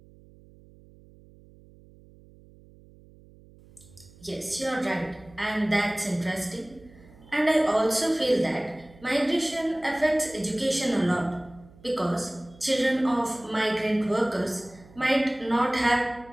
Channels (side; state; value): right; noise; hum, 24 dB below the sound